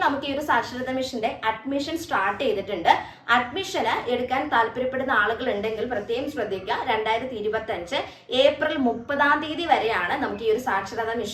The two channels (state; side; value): identical; both; correlation 1.00